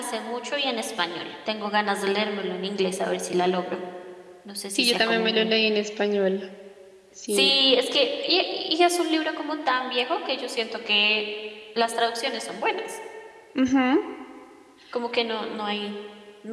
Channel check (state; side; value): identical; both; correlation 1.00